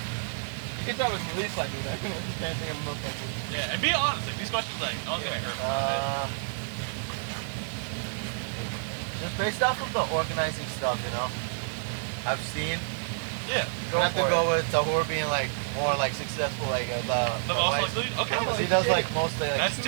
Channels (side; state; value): left; silent; digital silence